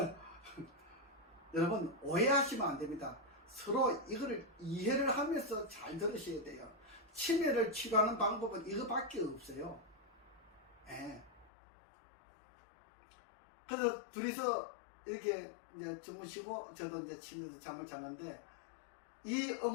여러분 오해하시면 안 됩니다. 서로 이거를 이해를 하면서 잘 들으셔야 돼요. 치매를 치료하는 방법은 이거밖에 없어요. 예. 그래서 둘이서 이렇게 이제 주무시고 저도 이제 침대에서 잠을 자는데 이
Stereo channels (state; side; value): drops out; right; at 11.5 s